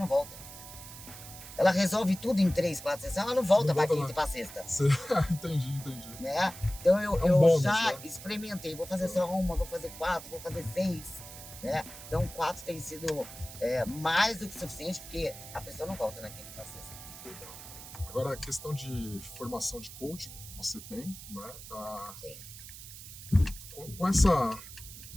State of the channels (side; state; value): right; noise; hiss, 14 dB below the sound